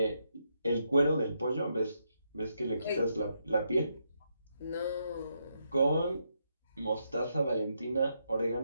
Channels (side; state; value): both; inverted; correlation -0.80